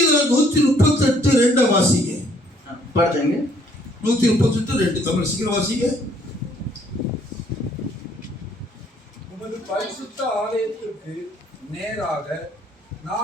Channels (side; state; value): both; normal; correlation 0.64